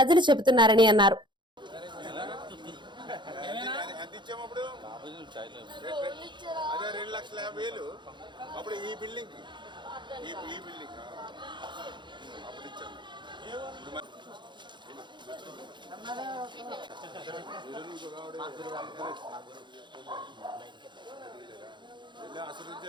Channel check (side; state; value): left; late; 0.23 ms